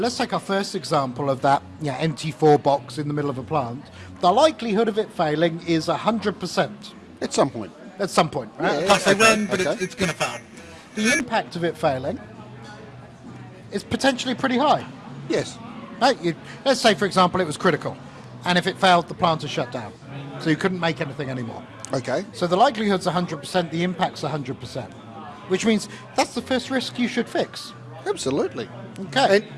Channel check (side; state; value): both; identical; correlation 1.00